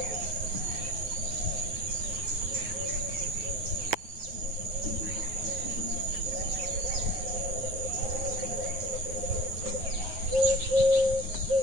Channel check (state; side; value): late; left; 9.4 ms